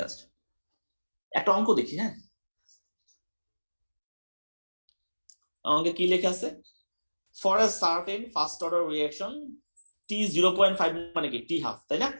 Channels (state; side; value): inverted; both; correlation -1.00